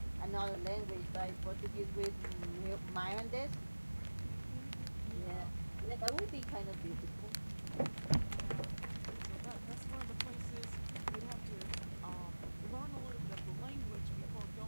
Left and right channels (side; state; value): both; inverted; correlation -1.00